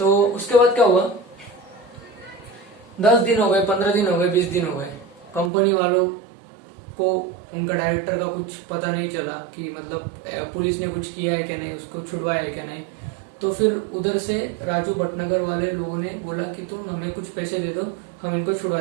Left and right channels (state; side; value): drops out; left; at 5.5 s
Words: उसके बाद क्या हुआ, 10 दिन हो गए, 15 दिन हो गए, 20 दिन हो गए, कंपनी वालों को उनका डायरेक्टर का कुछ पता नहीं चला कि मतलब पुलिस ने कुछ किया है क्या नहीं, उसको छुड़वाया है क्या नहीं। तो फिर उधर से राजू भटनागर वाले लोगों ने बोला कि तुम हमें कुछ पैसे दे दो, हम इनको छुड़वा